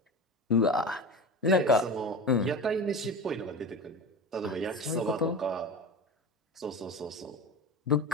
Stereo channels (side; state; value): both; normal; correlation 0.28